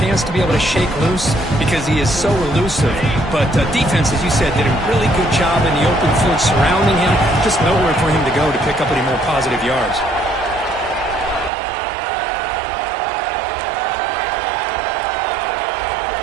to be able to shake loose because he is so elusive. But defense, as you said, did a really good job in the open field surrounding him. Just nowhere for him to go to pick up any more positive yards.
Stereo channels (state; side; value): drops out; left; at 11.5 s